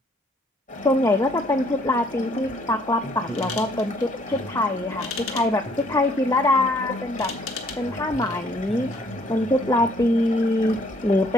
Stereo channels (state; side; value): normal; both; correlation 0.63